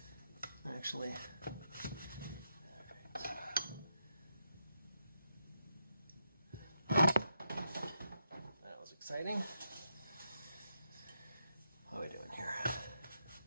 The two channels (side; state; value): both; inverted; correlation -0.81